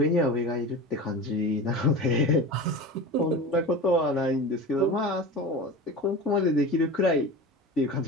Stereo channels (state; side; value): normal; both; correlation 0.31